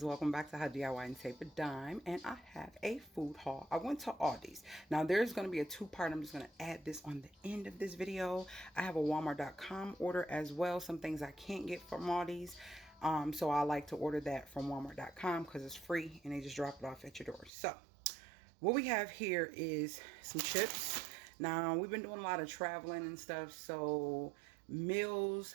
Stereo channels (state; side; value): drops out; left; at 17.5 s